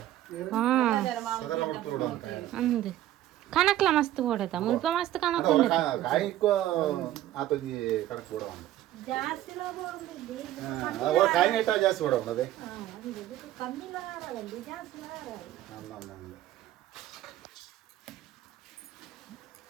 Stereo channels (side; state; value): left; quieter; 13.7 dB